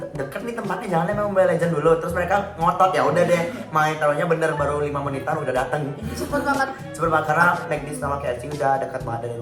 deket nih tempatnya, jangan main Mobile Legends dulu. Terus mereka ngotot, ya udah deh, main taruhnya bener baru 5 menitan udah datang. Cepet banget. Cepet banget karena McD sama KFC udah dekat banget dari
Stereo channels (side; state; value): both; identical; correlation 1.00